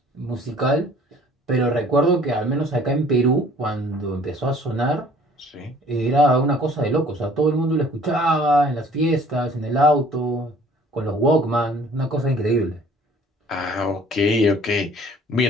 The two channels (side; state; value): both; normal; correlation 0.54